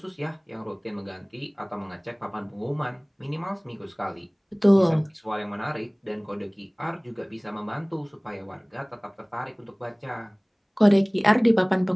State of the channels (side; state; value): both; identical; correlation 1.00